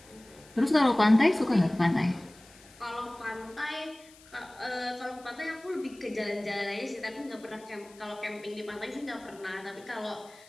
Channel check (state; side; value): noise; left; hiss, 24 dB below the sound